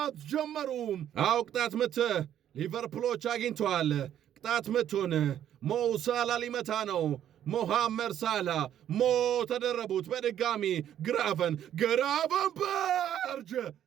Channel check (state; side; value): quieter; left; 10.7 dB